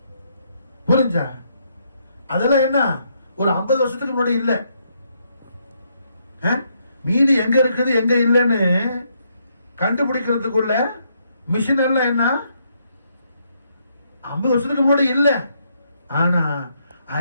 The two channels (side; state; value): both; inverted; correlation -0.75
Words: புரிஞ்சா? அதெல்லாம் என்ன ஒரு 50 வருஷத்துக்கு முன்னாடி இல்ல. மீன் எங்க இருக்குது எங்க இல்லைன்னு கண்டுபிடிக்கிறதுக்குள்ள மிஷின் எல்லாம் என்ன 50 வருஷத்துக்கு முன்னாடி இல்ல. ஆனா